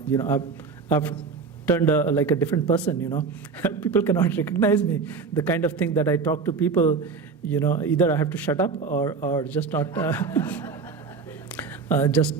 I've turned like a different person. People cannot recognize me. The kind of thing that I talk to people, either I have to shut up or just not. Just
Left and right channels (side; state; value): left; quieter; 4.9 dB